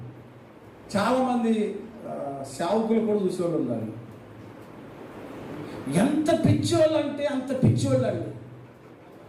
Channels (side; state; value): both; identical; correlation 1.00